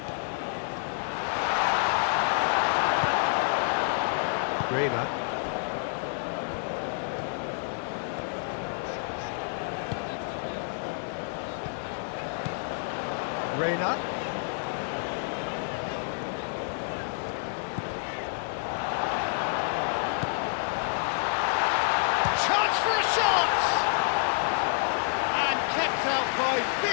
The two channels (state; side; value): silent; right; 59 dB below the other